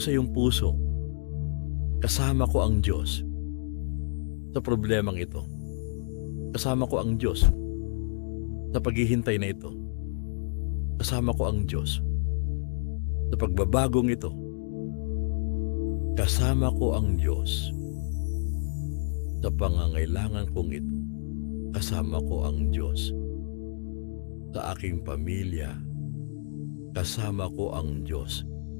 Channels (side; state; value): right; silent; digital silence